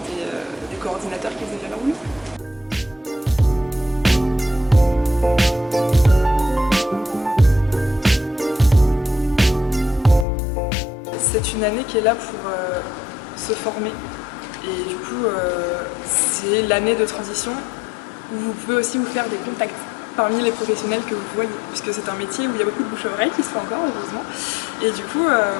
et des coordinateurs qui faisaient bien leur oui. C'est une année qui est là pour se former. Et du coup, c'est l'année de transition où vous pouvez aussi vous faire des contacts parmi les professionnels que vous voyez, puisque c'est un métier où il y a beaucoup de bouche-à-oreille qui se fait encore, heureusement. Et du coup,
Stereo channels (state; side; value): drops out; right; at 10.2 s